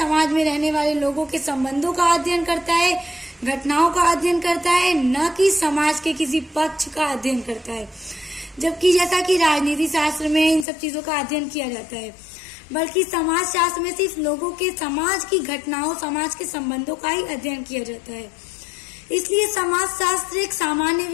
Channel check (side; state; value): right; drops out; at 10.7 s